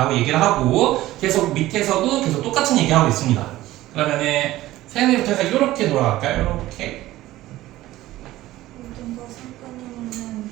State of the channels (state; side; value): quieter; left; 16.1 dB